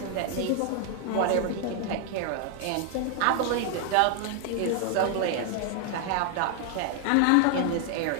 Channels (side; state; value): both; different; correlation 0.00